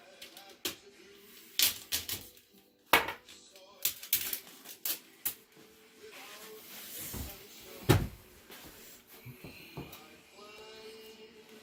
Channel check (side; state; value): both; identical; correlation 1.00